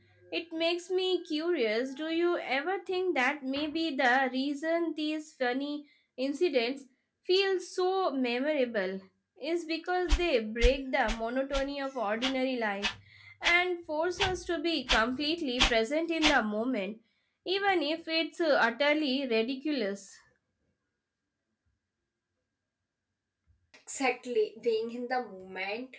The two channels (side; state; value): both; identical; correlation 1.00